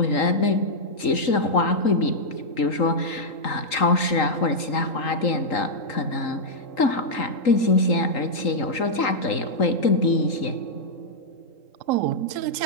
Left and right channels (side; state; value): right; late; 3.8 ms